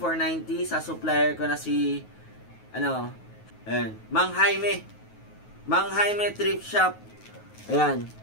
sa supplier ko na si ayan, Mang Jaime Thrift Shop. Ayan.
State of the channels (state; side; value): late; right; 9.4 ms